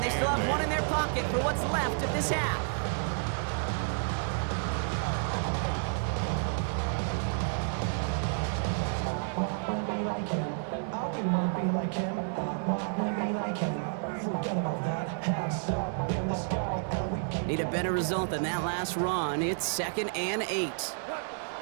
they still have one in their pocket for what's left of this half. Need a better result than that last run. It's 2nd and 8.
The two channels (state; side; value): silent; left; digital silence